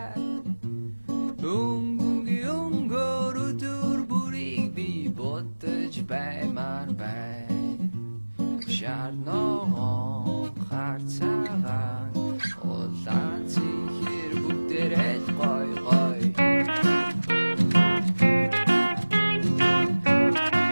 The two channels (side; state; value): both; inverted; correlation -1.00